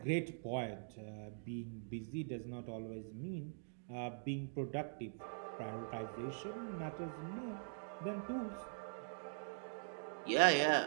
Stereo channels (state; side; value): silent; left; digital silence